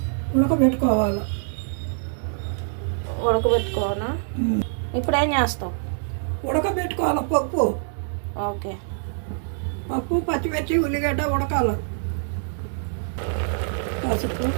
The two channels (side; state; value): left; silent; 62 dB below the other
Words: ఉడకబెట్టుకోవాలి. ఉడకబెట్టుకోవాలా? ఇప్పుడు ఏం చేస్తాం? ఉడకబెట్టుకోవాలి పప్పు. ఓకే, పప్పు, పచ్చిమిర్చి, ఉల్లిగడ్డ ఉడకాలి. పసుపు,